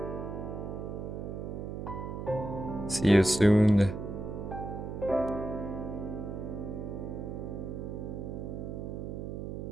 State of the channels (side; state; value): right; noise; hum, 6 dB below the sound